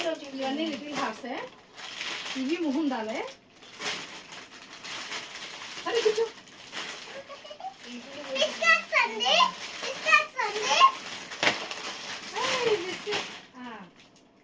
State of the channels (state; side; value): identical; both; correlation 1.00